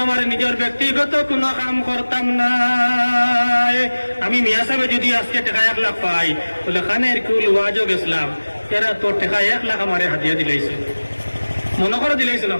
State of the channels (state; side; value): inverted; both; correlation -1.00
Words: আমার নিজের ব্যক্তিগত কোনো কাম করতাম না আমি মিয়া সাহেব যদি আজকে টাকা 1 লাখ পাই বলে খানের কুল ওয়াজও গেছিলাম এরা তোর টাকা 1 লাখ আমারে হাতিয়া দিলাইছে মনে করে দিলাইছেন